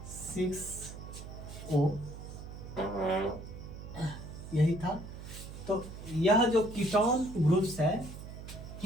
यही था। तो यह जो कीटोन ग्रुप्स है,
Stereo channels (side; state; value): right; noise; hum, 11 dB below the sound